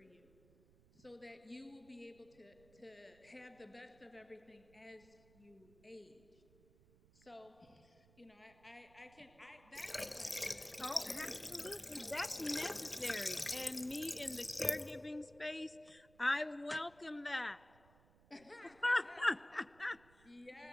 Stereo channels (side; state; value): right; noise; rumble, 26 dB below the sound